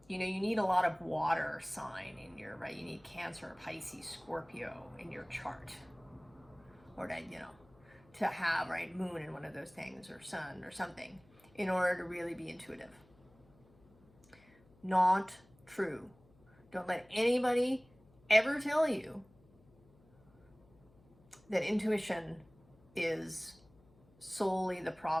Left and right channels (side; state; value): left; noise; hum, 29 dB below the sound